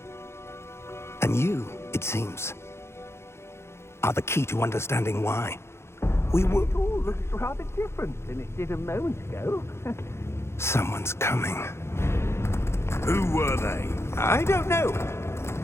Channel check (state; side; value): late; right; 0.13 ms